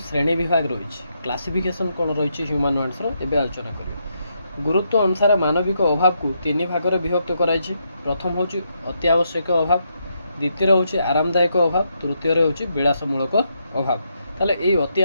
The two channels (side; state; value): both; inverted; correlation -0.79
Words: ଶ୍ରେଣୀ ବିଭାଗ ରହିଛି, କ୍ଲାସିଫିକେସନ୍ କ'ଣ ରହିଛି ହ୍ୟୁମାନ୍ ୱାଣ୍ଟସର ଏବେ ଆଲୋଚନା କରିବା। ଗୁରୁତ୍ୱ ଅନୁସାରେ ମାନବିକ ଅଭାବକୁ ତିନି ଭାଗରେ ବିଭକ୍ତ କରାଯାଇଛି। ପ୍ରଥମ ହେଉଛି ଅତି ଆବଶ୍ୟକ ଅଭାବ, ଦ୍ୱିତୀୟରେ ହେଉଛି ଆରାମଦାୟକ ଅଭାବ, ତୃତୀୟରେ ହେଉଛି ବିଳାସମୂଳକ ଅଭାବ। ତାହେଲେ ଏଇ ଅତି